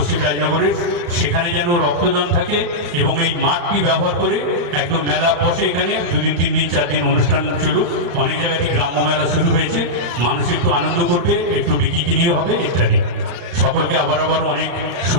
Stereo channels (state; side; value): late; left; 35 ms